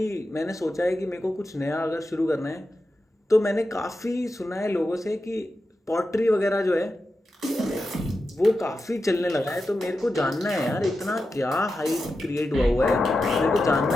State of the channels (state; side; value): normal; both; correlation 0.90